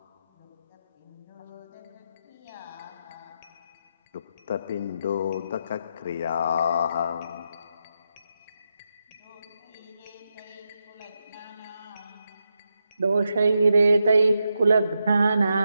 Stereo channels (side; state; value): both; inverted; correlation -0.85